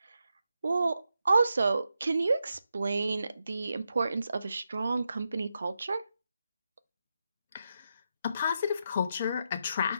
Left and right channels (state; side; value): inverted; both; correlation -0.85